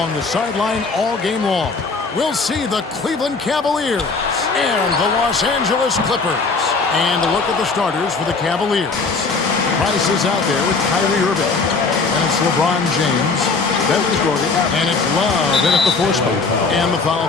the sideline all game long. We'll see the Cleveland Cavaliers and the Los Angeles Clippers. And a look at the starters for the Cavaliers. Price is out there with Kyrie Irving. And it's LeBron James. That was Gordon. And it's Love in at the force spot. And the foul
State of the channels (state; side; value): quieter; right; 4.3 dB